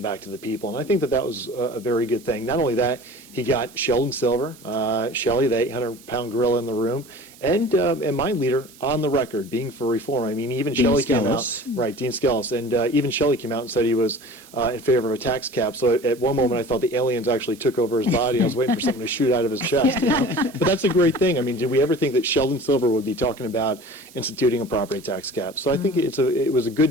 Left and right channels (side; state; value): right; noise; hiss, 23 dB below the sound